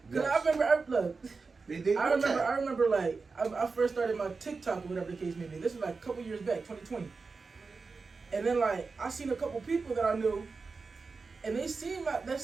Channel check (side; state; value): left; quieter; 4.4 dB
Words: because I remember, I remember, like, I first started my TikTok or whatever the case may be. This was like a couple years back, 2020. And then, like, I seen a couple people that I knew, and they seen that